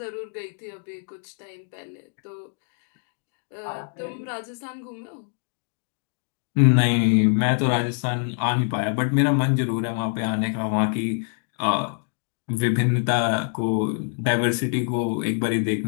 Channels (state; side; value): silent; right; 56 dB below the other